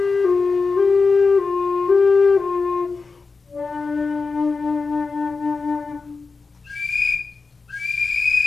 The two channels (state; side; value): quieter; right; 4.4 dB